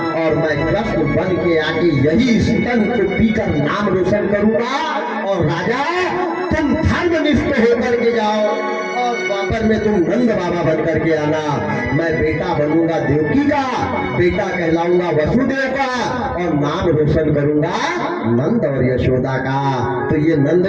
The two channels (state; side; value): identical; both; correlation 1.00